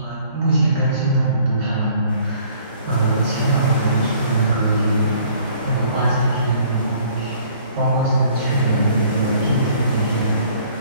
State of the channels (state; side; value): inverted; both; correlation -0.57